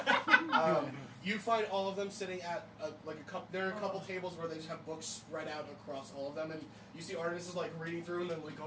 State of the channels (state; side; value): identical; both; correlation 1.00